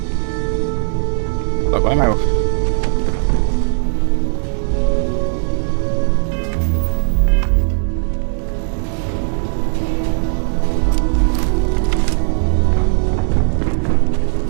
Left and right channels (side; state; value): left; silent; 63 dB below the other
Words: Look, why am I?